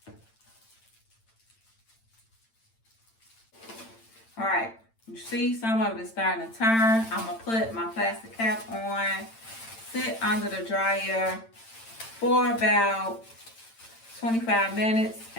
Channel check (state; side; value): late; right; 8.9 ms